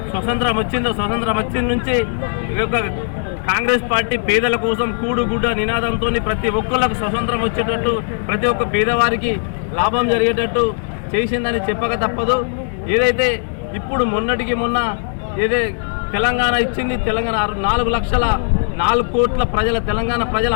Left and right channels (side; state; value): right; silent; digital silence